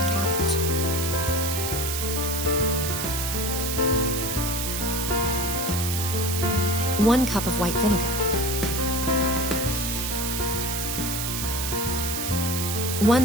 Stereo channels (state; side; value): noise; right; hiss, 2 dB below the sound